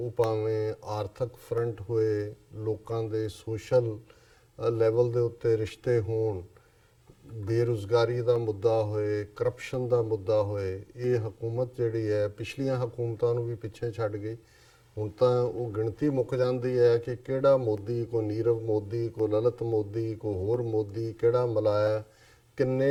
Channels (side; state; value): both; identical; correlation 1.00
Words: ਭਾਵੇਂ ਆਰਥਿਕ ਫਰੰਟ ਹੋਏ, ਲੋਕਾਂ ਦੇ ਸੋਸ਼ਲ ਲੈਵਲ ਦੇ ਉੱਤੇ ਰਿਸ਼ਤੇ ਹੋਣ, ਬੇਰੁਜ਼ਗਾਰੀ ਦਾ ਮੁੱਦਾ ਹੋਏ, ਕਰਪਸ਼ਨ ਦਾ ਮੁੱਦਾ ਹੋਏ, ਇਹ ਹਕੂਮਤ ਜਿਹੜੀ ਹੈ ਪਿਛਲੀਆਂ ਹਕੂਮਤਾਂ ਨੂੰ ਵੀ ਪਿੱਛੇ ਛੱਡ ਗਈ। ਹੁਣ ਤਾਂ ਉਹ ਗਿਣਤੀ ਮੁੱਕ ਜਾਂਦੀ ਹੈ ਕਿ ਕਿਹੜਾ ਮੋਦੀ, ਕੋ ਨੀਰਵ ਮੋਦੀ, ਕੋ ਲਲਿਤ ਮੋਦੀ, ਕੋ ਹੋਰ ਮੋਦੀ, ਕਿਹੜਾ ਮਲਾਇਆ,